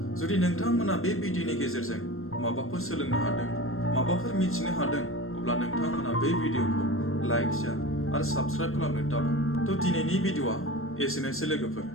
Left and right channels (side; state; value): right; late; 0.61 ms